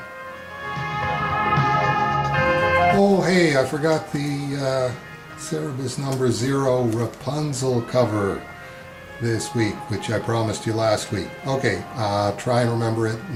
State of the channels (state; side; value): identical; both; correlation 1.00